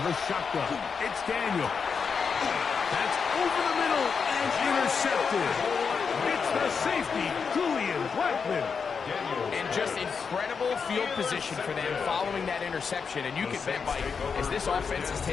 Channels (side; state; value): right; quieter; 5.8 dB